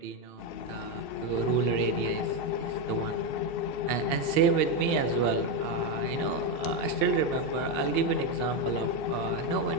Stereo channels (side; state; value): right; late; 2.7 ms